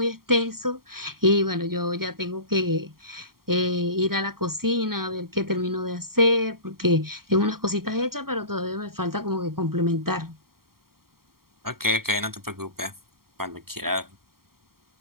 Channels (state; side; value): late; left; 0.93 ms